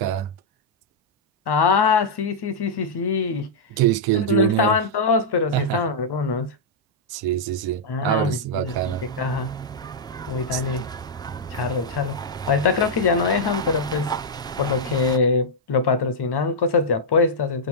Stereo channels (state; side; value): normal; both; correlation -0.07